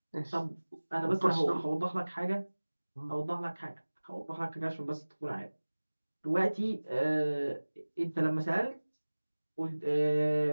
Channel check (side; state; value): both; inverted; correlation -1.00